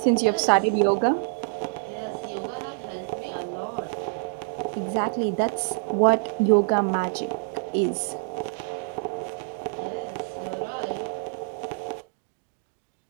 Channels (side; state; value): left; silent; digital silence